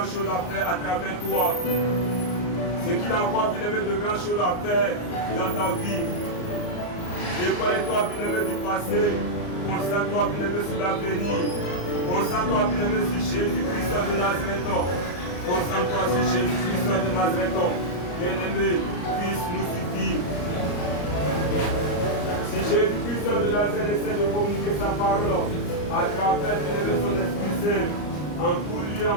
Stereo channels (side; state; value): right; late; 34 ms